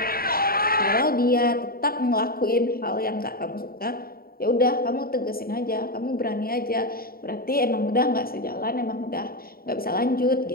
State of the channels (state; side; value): late; right; 0.43 ms